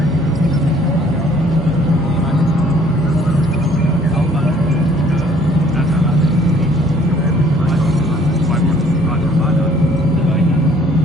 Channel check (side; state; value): both; normal; correlation 0.59